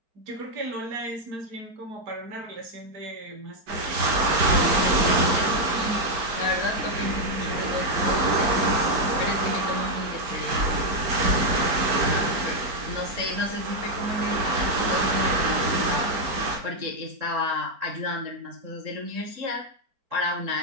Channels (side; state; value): left; late; 4.4 ms